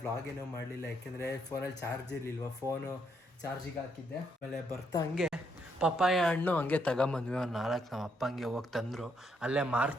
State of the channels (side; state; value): both; normal; correlation 0.75